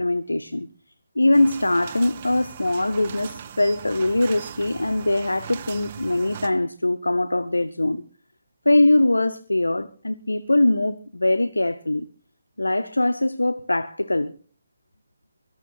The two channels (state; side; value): inverted; both; correlation -0.99